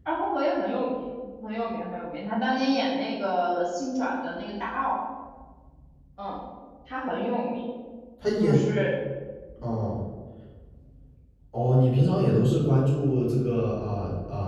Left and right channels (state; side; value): identical; both; correlation 1.00